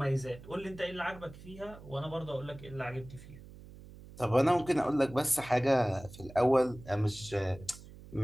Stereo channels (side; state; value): right; noise; hum, 18 dB below the sound